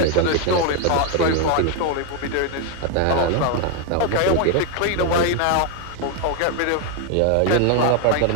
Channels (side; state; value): both; different; correlation 0.01